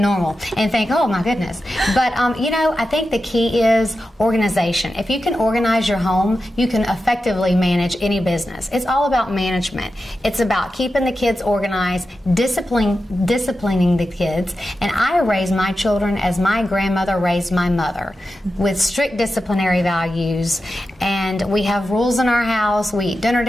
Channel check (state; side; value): normal; both; correlation 0.91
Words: and think, oh my goodness. But you know, I think the key is organization. If you can organize your home, you can effectively manage any business. It's all about management. It's about keeping the kids organized, disciplining the kids. And I raise my children as my grandmother raised my mother, with strict disciplinary values. And we have rules in our house. We eat dinner